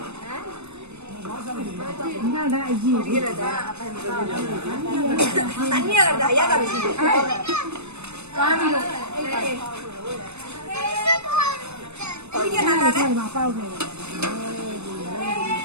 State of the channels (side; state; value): left; late; 0.81 ms